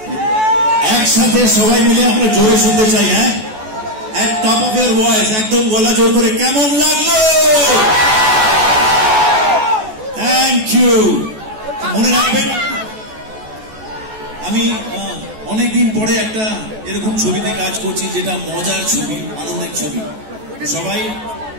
একসাথে সবাই মিলে আমরা জোরে শুনতে চাই। হ্যাঁ, এক টপ অফ ইয়ার ভয়েস, একদম গলা জোর করে, কেমন লাগলো? Thank you. মনে রাখবেন আমি অনেকদিন পরে একটা এরকম ছবিতে কাজ করছি, যেটা মজার ছবি, আনন্দের ছবি। সবাই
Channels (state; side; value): late; left; 14 ms